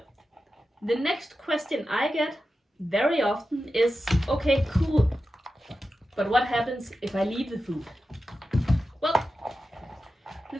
The next question I get very often is, okay, cool, but what happens if I leave the food? Well, the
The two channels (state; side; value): normal; both; correlation 0.92